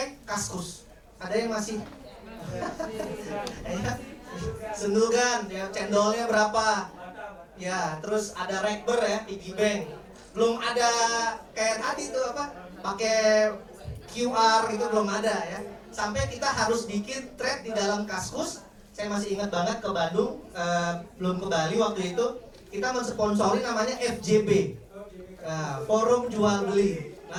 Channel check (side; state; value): both; identical; correlation 1.00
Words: Kaskus. Ada yang masih Sendugan ya, cendolnya berapa ya, terus ada rekber ya, piggy bank. Belum ada kayak tadi tuh apa, pakai QR itu belum ada ya. Sampai kita harus bikin thread di dalam Kaskus. Saya masih ingat banget ke Bandung, belum ke Bali waktu itu, kita mensponsori namanya FJB, Forum Jual Beli.